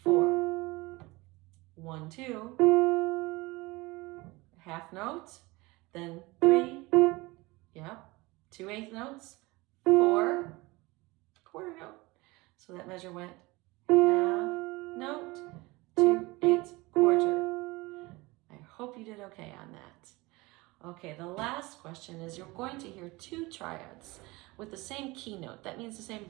4. 1, 2, half note, then 3, yep, 2/8 notes, 4, quarter note. So that measure went half note, 2/8 quarter. I hope you did okay on that. Okay, the last question is you're going to hear 2 triads with the same key note. That means the same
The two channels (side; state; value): left; quieter; 22.7 dB